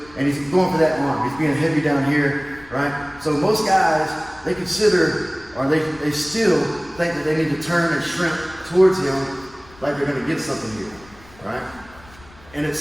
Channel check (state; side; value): noise; left; rumble, 24 dB below the sound